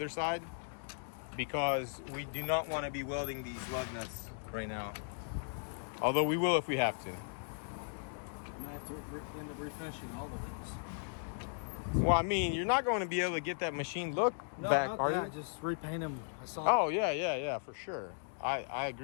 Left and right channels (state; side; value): silent; right; digital silence